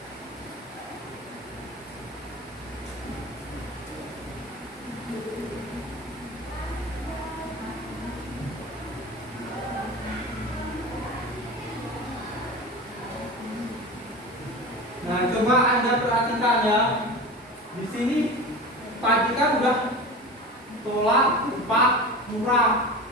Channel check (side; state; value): both; normal; correlation 0.31